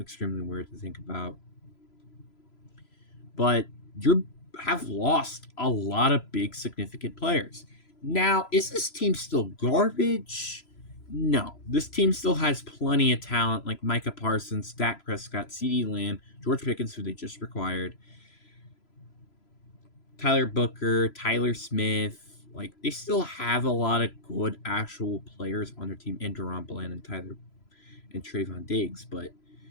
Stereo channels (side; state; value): right; late; 3.0 ms